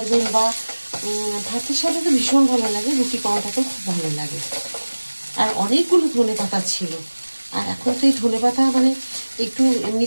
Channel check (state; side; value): inverted; both; correlation -1.00